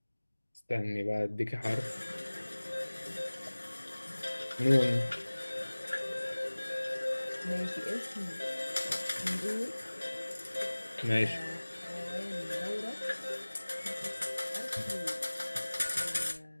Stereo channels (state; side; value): inverted; both; correlation -1.00